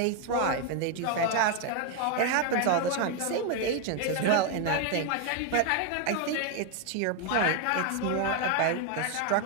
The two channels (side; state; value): both; different; correlation 0.01